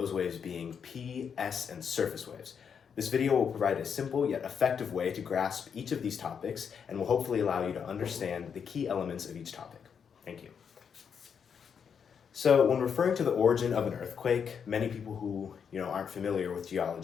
waves being P, S, and surface waves. This video will provide a simple yet effective way to grasp each of these topics and will hopefully allow you to understand the key elements of each topic. Thank you. So when referring to the origin of an earthquake, many people who aren't familiar with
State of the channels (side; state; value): right; quieter; 7.0 dB